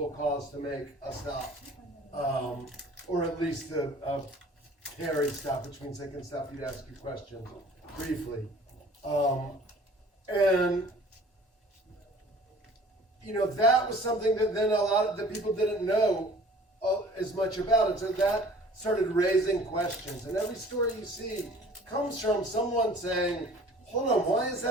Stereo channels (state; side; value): normal; both; correlation 0.50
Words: cause to make a stop, or at least a Terry stop, which means they can stop you to ask you questions briefly. And that was something that then a lot of the people didn't know as much about. And so that started raising questions. And every story you see comes from someone saying, hold on, why is